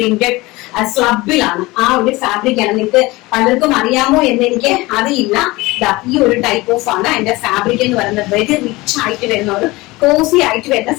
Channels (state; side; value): quieter; right; 21.3 dB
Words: സ്ലബിലാണ്. ആ ഒരു ഫാബ്രിക് ആണ്. നിങ്ങൾക്ക് പലർക്കും അറിയാമോ എന്ന് എനിക്ക് അറിയില്ല. ഈ ഒരു ടൈപ്പ് ഓഫ് ആണ് അതിന്റെ ഫാബ്രിക് എന്ന് പറയുന്നത്. വെരി റിച്ച് ആയിട്ട് വരുന്ന ഒരു കോസി ആയിട്ട് വരുന്ന